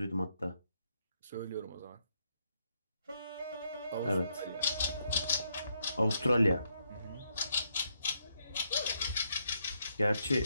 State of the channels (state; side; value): inverted; both; correlation -0.77